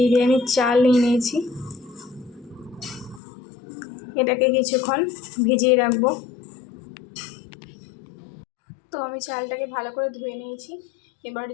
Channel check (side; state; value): right; drops out; at 3.2 s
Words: চাল নিয়ে নিয়েছি। এটাকে কিছুক্ষণ ভিজিয়ে রাখবো। তো আমি চালটাকে ভালো করে ধুয়ে নিয়েছি। এবার